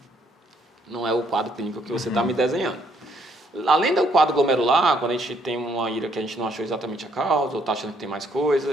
não é o quadro clínico que você está me desenhando. Além do quadro glomerular, quando a gente tem uma IRA que a gente não achou exatamente a causa, ou está achando que tem mais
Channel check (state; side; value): normal; both; correlation 0.69